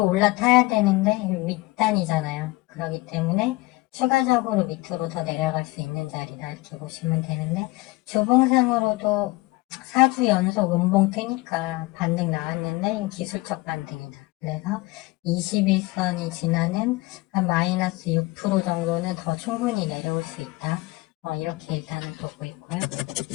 올라타야 되는데 밑단이잖아요. 그렇기 때문에 추가적으로 밑으로 더 내려갈 수 있는 자리다 이렇게 보시면 되는데 주봉상으로도 4주 연속 음봉 뜨니까 반등 나왔는데 기술적 반등이다. 그래서 21선이 지나는 한 마이너스 6% 정도는 더 충분히 내려올 수 있다. 이렇게 일단은 보고 있고요.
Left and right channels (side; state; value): right; quieter; 21.3 dB